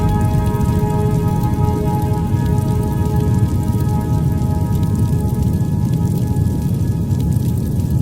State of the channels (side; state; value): both; identical; correlation 1.00